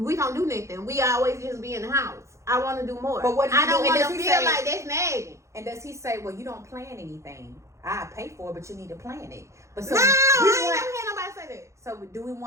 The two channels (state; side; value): late; left; 0.14 ms